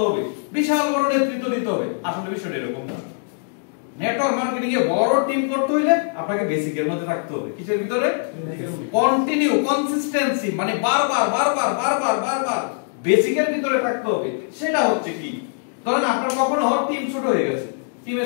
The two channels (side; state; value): right; silent; digital silence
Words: হবে বিশাল বড় নেতৃত্ব দিতে হবে আসলে বিষয়টা এরকম না নেটওয়ার্ক মার্কেটিং এ বড় টিম করতে হইলে আপনাকে বেসিকের মধ্যে থাকতে হবে কিসের ভিতরে কন্টিনিউ কনসিস্টেন্সি মানে বারবার বেসিকের ভিতরে থাকতে হবে সেটা হচ্ছে কি ধরেন আপনার কখনো টিম ছোট হয়ে গেছে টিমে